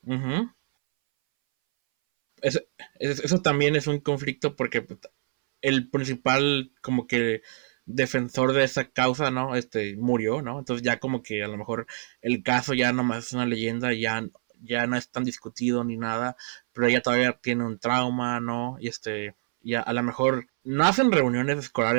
Ujú. Fíjate, no había notado eso. Eso, eso también es un conflicto porque pues, el principal como que defensor de esa causa, ¿no? Murió, ¿no? Entonces ya como que a lo mejor el caso ya nomás es una leyenda, ya no es tan discutido ni nada, pero ella todavía tiene un trauma, ¿no? Y Ujú. ya a lo mejor no hacen reuniones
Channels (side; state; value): left; silent; 61 dB below the other